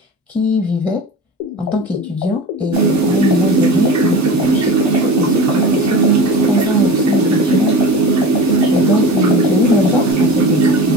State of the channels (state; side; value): normal; both; correlation 0.33